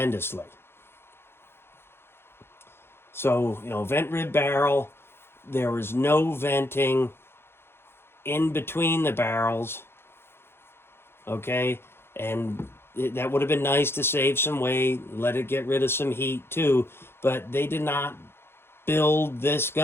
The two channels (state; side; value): late; right; 0.11 ms